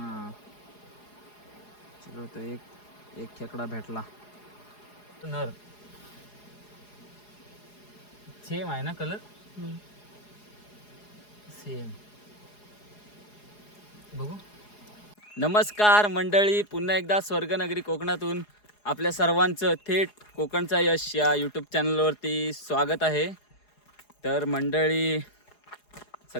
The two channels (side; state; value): right; late; 4.8 ms